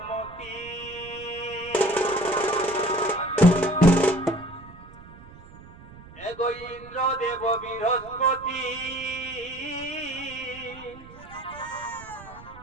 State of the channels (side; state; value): right; noise; rumble, 19 dB below the sound